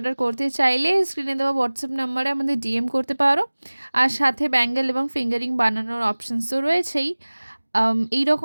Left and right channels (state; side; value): inverted; both; correlation -1.00